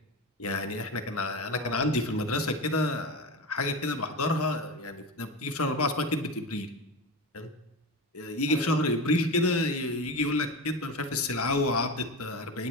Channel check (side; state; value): both; normal; correlation 0.23